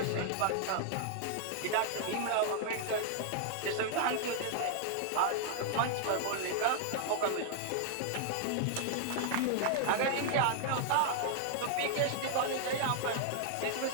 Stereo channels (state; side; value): different; both; correlation 0.00